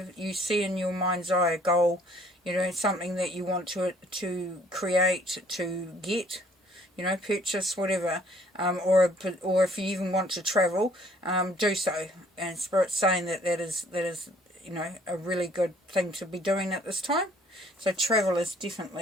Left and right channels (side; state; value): both; normal; correlation 0.60